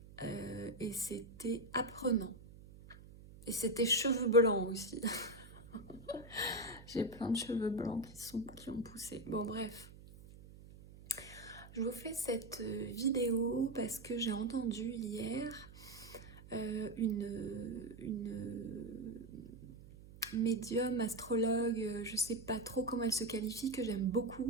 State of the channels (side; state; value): right; noise; hum, 18 dB below the sound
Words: et c'était apprenant. Et c'était cheveux blancs aussi. J'ai plein de cheveux blancs qui ont poussé. Bon, bref. Je vous fais cette vidéo parce que j'ai entendu hier une médium, astrologue, je sais pas trop comment elle se qualifie, que j'aime